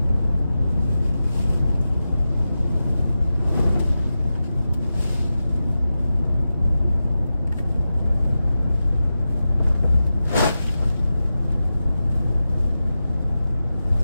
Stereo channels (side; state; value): both; inverted; correlation -0.92